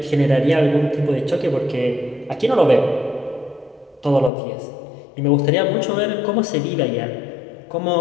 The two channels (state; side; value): drops out; right; at 4.3 s